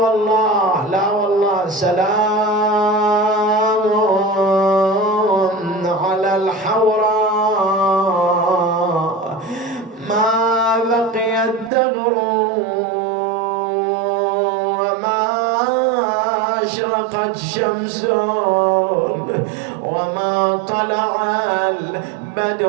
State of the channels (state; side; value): drops out; left; at 11.7 s